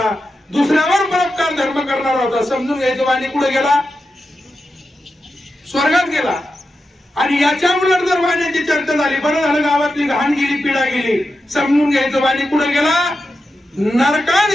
दुसऱ्यावर परोपकार धर्म करणारा होता, समजून घ्यायचं वाणी कुठे गेला, स्वर्गात गेला. आणि याच्या उलट जर वाण्याची चर्चा झाली, बरं झालं गावातली घाण गेली, पिढा गेली, समजून घ्यायचं वाणी कुठे गेला, नरकात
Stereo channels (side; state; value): both; normal; correlation 0.90